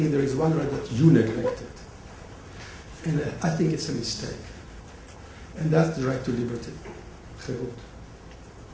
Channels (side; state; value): both; identical; correlation 1.00